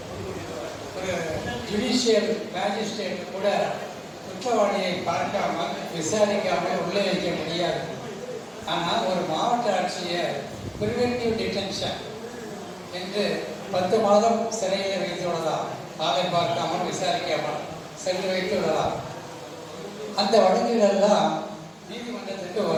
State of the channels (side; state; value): both; identical; correlation 1.00